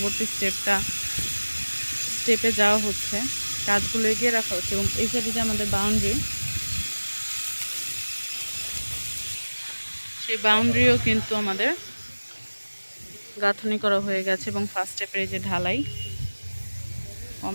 স্টেপে যাওয়া হচ্ছে। কাজগুলো এগিয়ে রাখা হচ্ছে এবং এই সাইডে যে আমাদের বাউন্ডারি, সেই বাউন্ডারিও কিন্তু আমাদের গাঁথনি করা হয়ে গেছে এবং ফার্স্ট স্টেপের এই যে ঢালাই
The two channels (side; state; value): both; inverted; correlation -1.00